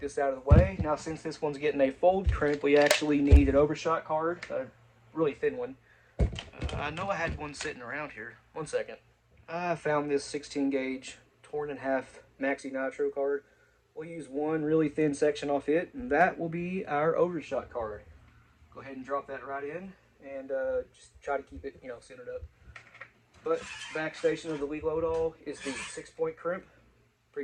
out of the way. Now, since this one's getting a fold crimp, we actually need an overshot card, a really thin one. I know I had one sitting around here. One second. I found this 16 gauge torn in half Maxi Nitro card. We'll use one really thin section off it, and that will be our overshot card. Go ahead and drop that right in, and just try to keep it, centered up. But backstation of the Lee Loadall is the 6-point crimp,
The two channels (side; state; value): both; identical; correlation 1.00